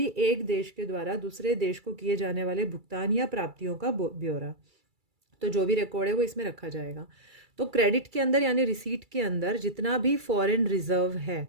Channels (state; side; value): late; left; 2.3 ms